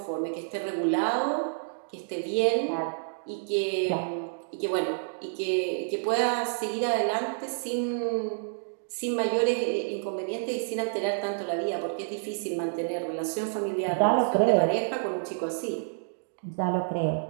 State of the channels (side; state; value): left; silent; digital silence